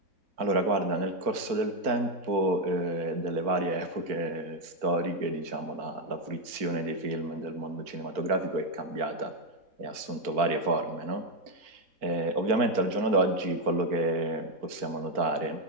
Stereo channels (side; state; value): left; late; 4.4 ms